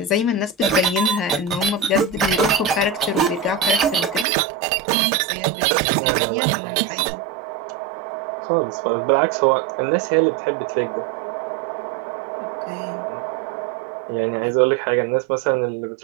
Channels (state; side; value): drops out; left; at 4.2 s